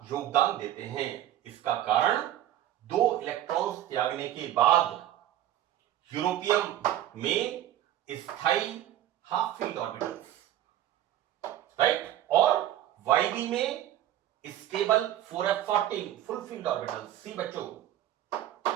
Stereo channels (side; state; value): left; quieter; 12.6 dB